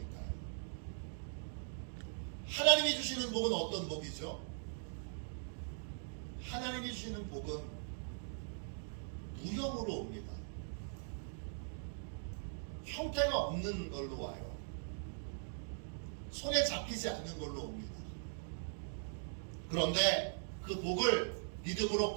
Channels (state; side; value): silent; left; digital silence